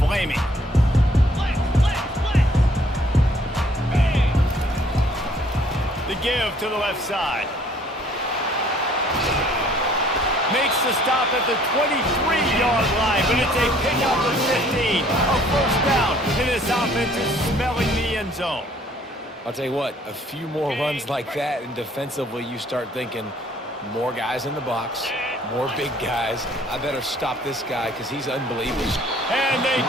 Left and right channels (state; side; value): normal; both; correlation 0.59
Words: The give to the left side. Makes the stop at the 23-yard line, but it's a pickup of 15. A first down, and this offense is smelling the end zone. I'll tell you what, a few more runs like that, and defensively you start thinking, more guys in the box, more big guys. I better stop this guy because he's unbelievable. And they